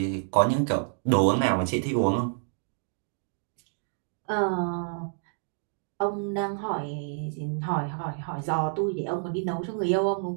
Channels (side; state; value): left; silent; digital silence